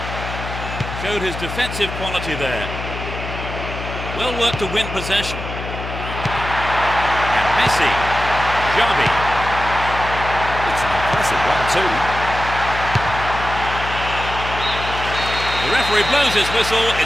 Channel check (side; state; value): left; noise; hum, 8 dB below the sound